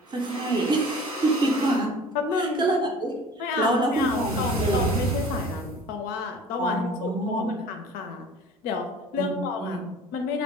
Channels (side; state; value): both; normal; correlation 0.45